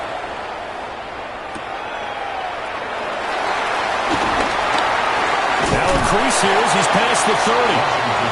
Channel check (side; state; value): both; identical; correlation 1.00